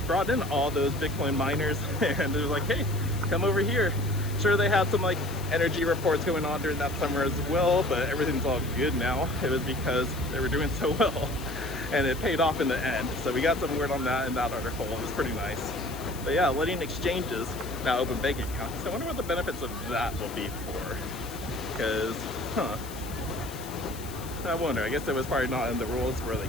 in all those Bitcoin miners, and it was like, hey, come over here. Sure, they had some like energy reports going on during that summer as well, but everything's all good now. It was because they were doing so well, and it paid off in the end. So we got some word on that in that article. It was pretty nice. But yeah, letting exchanges now open bank accounts. I wonder what the benefits of that will be for. Because, I wonder. I guess it was probably not in the rules where they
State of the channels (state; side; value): noise; left; hiss, 15 dB below the sound